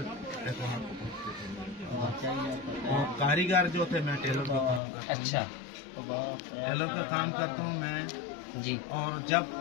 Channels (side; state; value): right; drops out; at 4.8 s